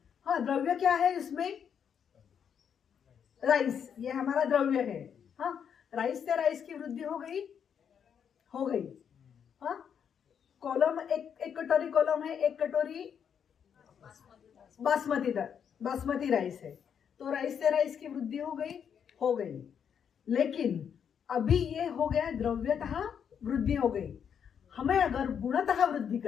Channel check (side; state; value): right; quieter; 7.8 dB